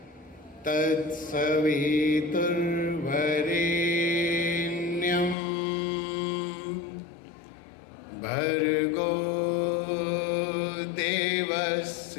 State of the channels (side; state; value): right; drops out; at 5.4 s